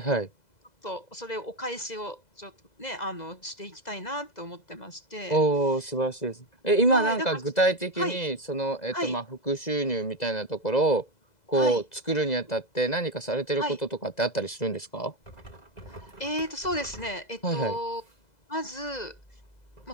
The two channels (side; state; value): right; late; 2.0 ms